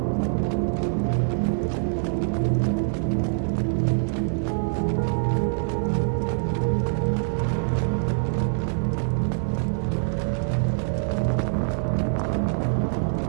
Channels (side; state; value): left; silent; digital silence